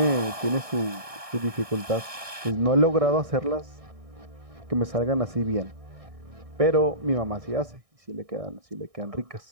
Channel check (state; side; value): late; left; 1.6 ms